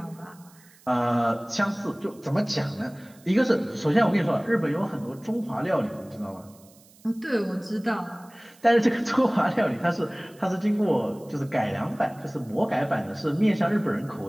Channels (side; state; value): right; noise; hiss, 27 dB below the sound